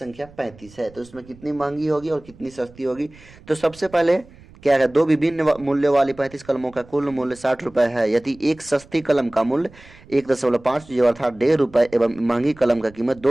35 है, तो इसमें कितनी महंगी होगी और कितनी सस्ती होगी। तो सबसे पहले क्या है, दो विभिन्न मूल्य वाली 35 कलमों का कुल मूल्य 60 रुपये है। यदि एक सस्ती कलम का मूल्य 1.5 जो अर्थात 1.5 रुपये एवं महंगी कलम का कीमत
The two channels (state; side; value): noise; right; rumble, 23 dB below the sound